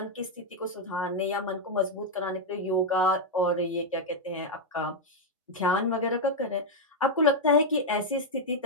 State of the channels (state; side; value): normal; both; correlation 0.00